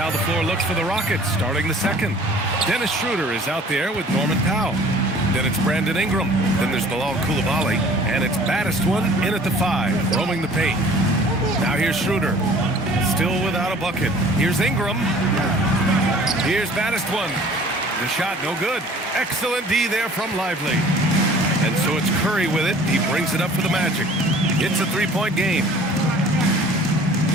the floor looks for the Rockets starting the second. Dennis Schroeder is out there with Norman Powell. Then it's Brandon Ingram. Then there's Bilal Coulibaly. And it's baddest one in at the 5, roaming the paint. Now here's Schroeder. Still without a bucket. Here's Ingram. Here's baddest one. The shot no good. Excellent D there from Lively. And so it's Curry with it. He brings it up for the Magic. It's a 3-point game.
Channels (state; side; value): normal; both; correlation 0.50